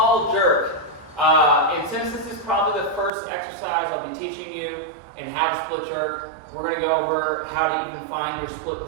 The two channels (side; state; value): left; drops out; at 3.1 s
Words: jerk. And since this is probably the first exercise I'll be teaching you in how to split jerk, we're going to go over how to even find your split